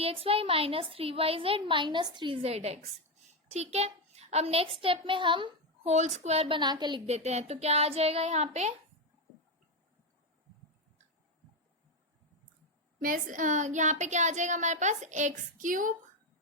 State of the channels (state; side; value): normal; both; correlation 0.08